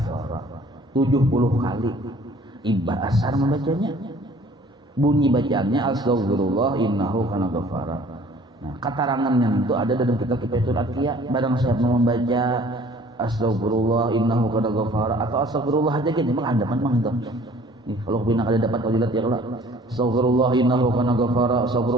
70 kali imbah asar membacanya. Bunyi bacaannya astaghfirullah innahu kana ghaffara. Nah, keterangannya itu ada dalam kitab Kifayatul Atqiya. Barang siapa membaca astaghfirullah innahu kana ghaffara atau astaghfirullah aja gitu, memang ada memang itu. Nih, kalau bina kada dapat fadilat ya Allah. Astaghfirullah innahu kana ghaffara,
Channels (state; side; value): normal; both; correlation 0.53